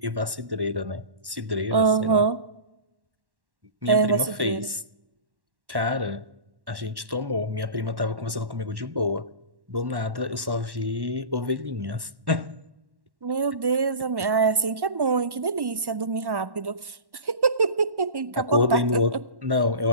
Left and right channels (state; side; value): late; left; 1.1 ms